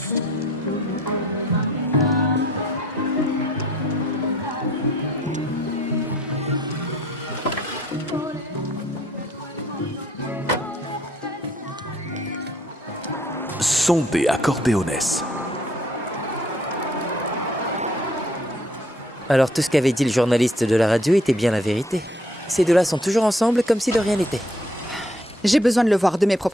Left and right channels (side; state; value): both; normal; correlation 0.62